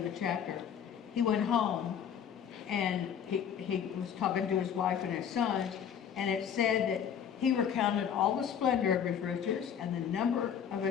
of the chapter, he went home and he was talking to his wife and his sons, and it said that he recounted all the splendor of his riches and the number of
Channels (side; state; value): right; quieter; 8.3 dB